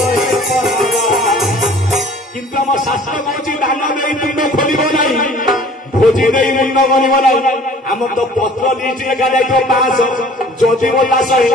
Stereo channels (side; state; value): both; normal; correlation 0.50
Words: କିନ୍ତୁ ଆମ ଶାସ୍ତ୍ର କହୁଛି ଦାନ ଦେଇ ତୁଣ୍ଡ ଖୋଲିବ ନାହିଁ ଭୋଜି ଦେଇ ମୁଣ୍ଡ କରିବ ନାହିଁ ଆମର ତ ପତ୍ର ଲିଷ୍ଟ ଲେଖା ଯାଇଥିବ 500 ଯଦି ବୋଲା